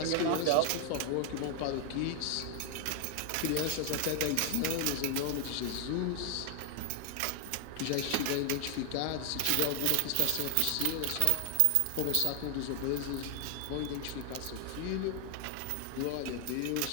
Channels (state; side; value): different; both; correlation 0.00